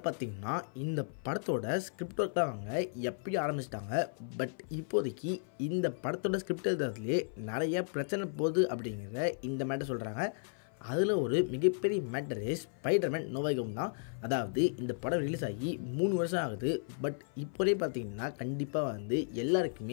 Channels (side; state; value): right; silent; 55 dB below the other